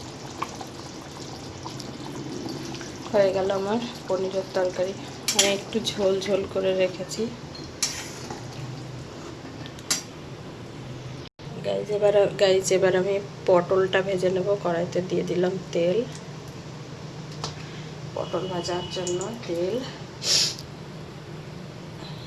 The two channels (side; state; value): both; identical; correlation 1.00